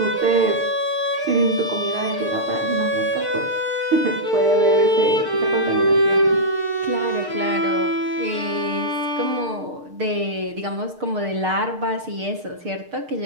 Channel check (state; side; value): late; left; 6.6 ms